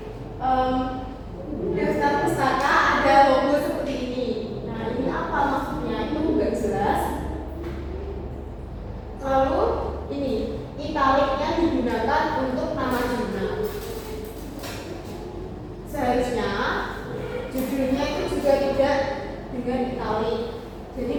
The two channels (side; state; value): both; identical; correlation 1.00